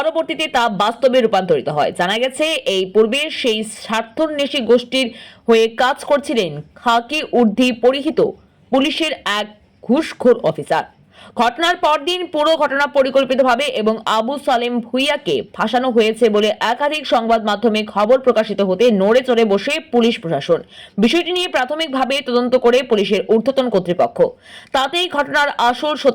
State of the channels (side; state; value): both; identical; correlation 1.00